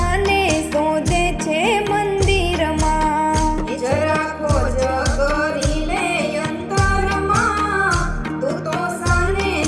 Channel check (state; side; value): identical; both; correlation 1.00